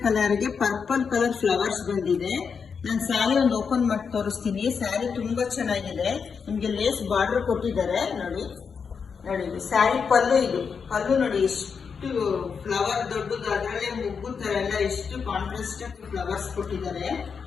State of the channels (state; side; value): quieter; right; 6.0 dB